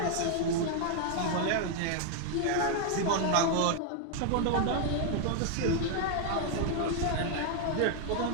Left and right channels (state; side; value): different; both; correlation 0.00